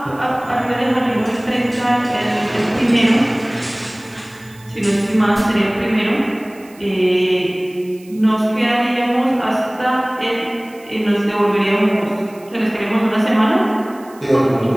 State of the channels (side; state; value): right; noise; hiss, 26 dB below the sound